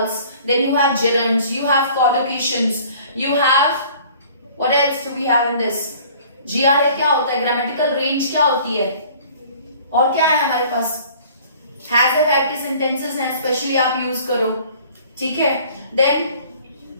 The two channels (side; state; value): both; inverted; correlation -0.51